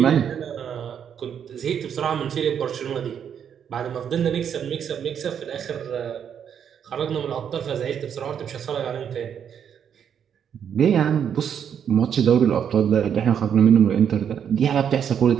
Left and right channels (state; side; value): quieter; left; 8.3 dB